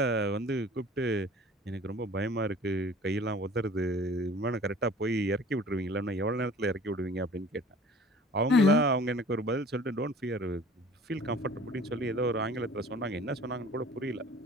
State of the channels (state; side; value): normal; both; correlation 0.48